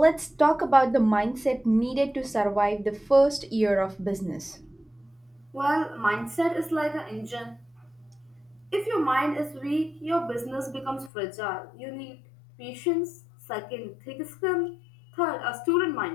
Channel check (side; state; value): right; drops out; at 11.1 s